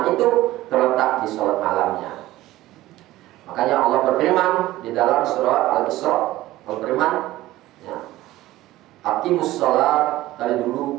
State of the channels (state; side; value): quieter; left; 16.4 dB